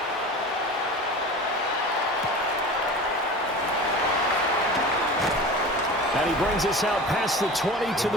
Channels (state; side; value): normal; both; correlation 0.34